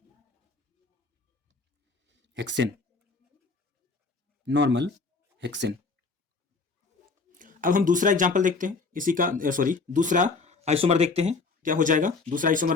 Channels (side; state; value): right; quieter; 4.2 dB